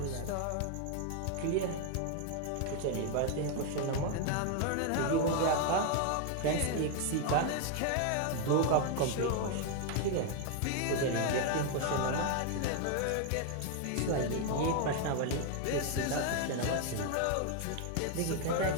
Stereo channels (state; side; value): different; both; correlation 0.01